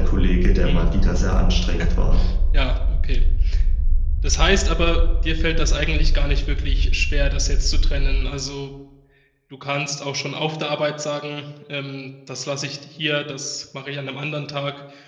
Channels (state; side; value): identical; both; correlation 1.00